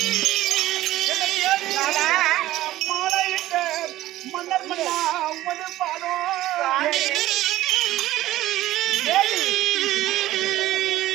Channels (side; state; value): left; quieter; 15.4 dB